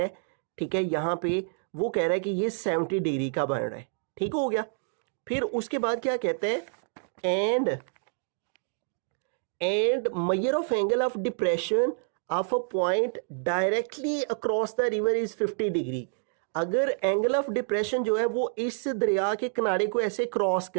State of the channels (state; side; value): silent; left; digital silence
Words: ठीक है, यहाँ पे वो कह रहा है कि ये 70 डिग्री का बन रहा है। ठीक हो गया। फिर उसके बाद क्या कहते हैं, and major of angle of depression of a point directly across the river is 50 degree. अगर एंगल ऑफ डिप्रेशन जो है वो इस दरिया के किनारे को ऐसे क्रॉस